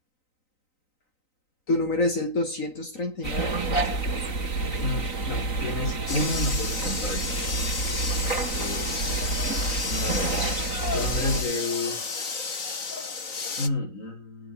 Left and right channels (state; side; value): late; right; 3.9 ms